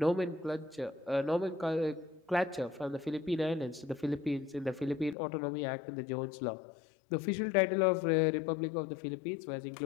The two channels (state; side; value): drops out; right; at 5.2 s